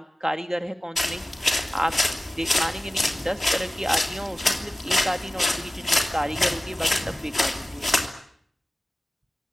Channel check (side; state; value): both; normal; correlation 0.96